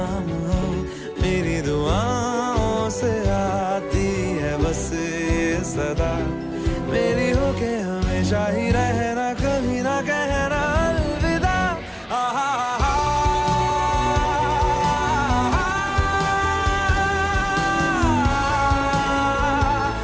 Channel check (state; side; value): identical; both; correlation 1.00